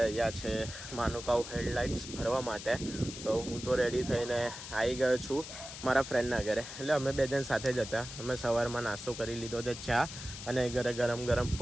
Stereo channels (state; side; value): noise; left; hiss, 10 dB below the sound